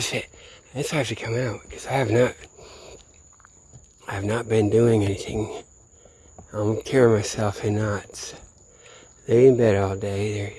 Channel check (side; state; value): both; identical; correlation 1.00